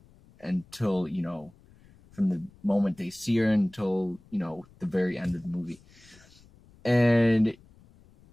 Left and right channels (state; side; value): noise; left; rumble, 27 dB below the sound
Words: until, you know, from the moment they see her until, you know, the very end of the movie. And,